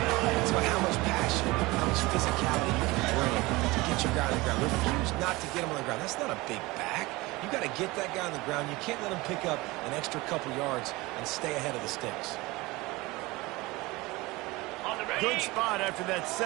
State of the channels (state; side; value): quieter; left; 21.8 dB